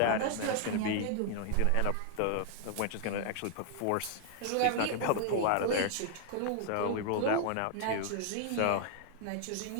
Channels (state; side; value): different; both; correlation 0.00